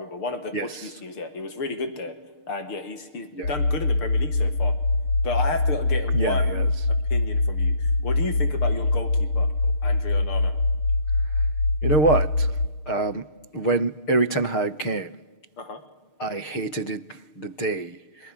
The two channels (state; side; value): late; right; 6.6 ms